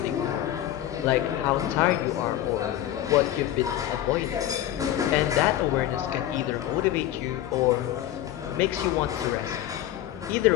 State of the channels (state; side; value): quieter; right; 12.7 dB